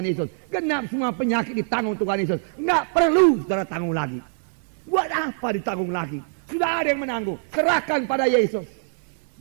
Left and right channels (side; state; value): left; silent; 62 dB below the other